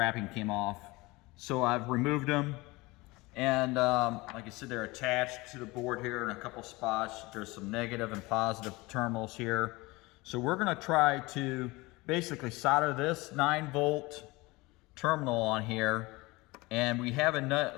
came off. So I've removed them, and like I said, they're attached to the board here in a couple spots. There's some negative and positive terminals here. So we're gonna try to basically solder this 9-volt terminal on here, and we have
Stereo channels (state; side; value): quieter; right; 22.5 dB